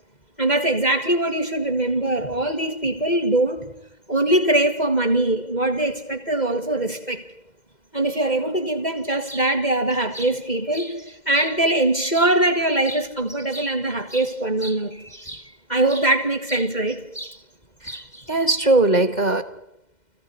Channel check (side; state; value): right; late; 2.1 ms